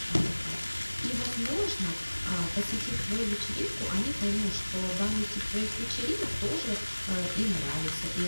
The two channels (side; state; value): both; inverted; correlation -1.00